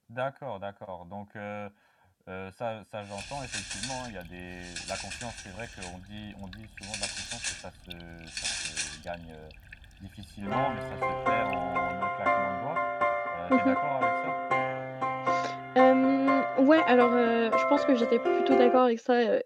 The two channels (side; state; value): both; identical; correlation 1.00